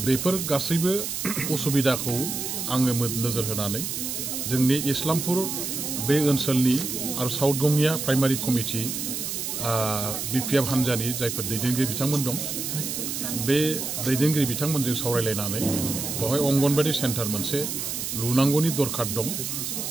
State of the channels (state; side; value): noise; right; hiss, 4 dB below the sound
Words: बेफोर गासैबो उसुबिदाखौ आङो नोजोर होनानै जोंनि इस्लामपुर बे ओनसोलनि आरो साउथ गंगिया प्राइमारि कमिटि बिपिएफ हान्जानि जायफोर दैदेनगिरि बिथांमोन दं बे दैदेनगिरि बिथांमोनजों सावरायलायनानै बेवहाय अंगनबादि सेन्टार मोनसे लुनांगौनि दरखार दं